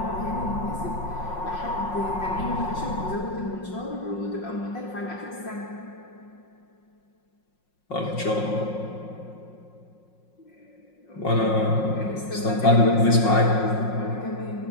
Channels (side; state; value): right; late; 5.5 ms